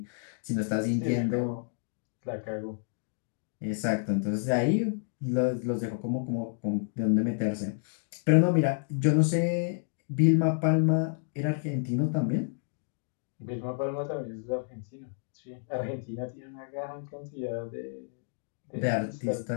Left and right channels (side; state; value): right; silent; digital silence